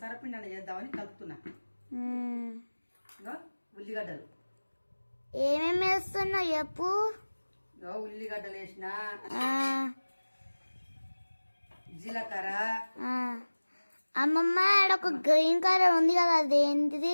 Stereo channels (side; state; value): both; inverted; correlation -1.00